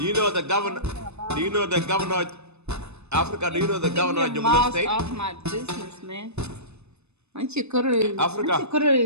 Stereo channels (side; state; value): left; late; 0.81 ms